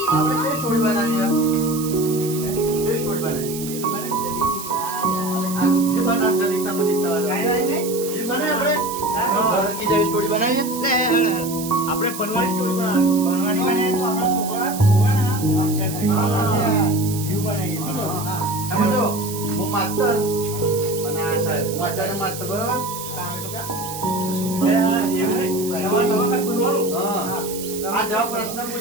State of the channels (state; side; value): noise; right; hiss, 10 dB below the sound